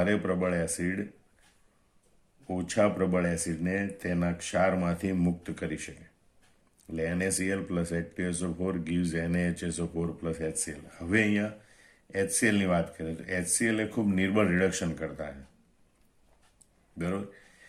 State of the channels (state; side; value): identical; both; correlation 1.00